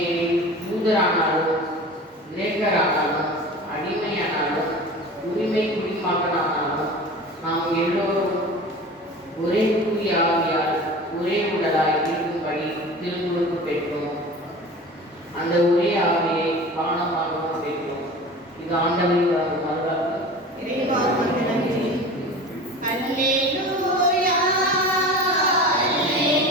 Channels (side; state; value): both; normal; correlation 0.37